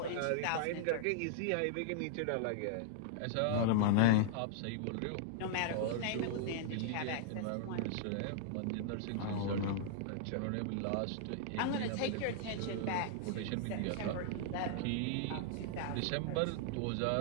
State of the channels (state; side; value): different; both; correlation -0.01